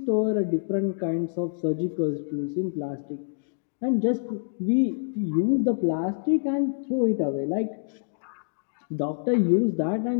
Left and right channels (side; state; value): right; silent; digital silence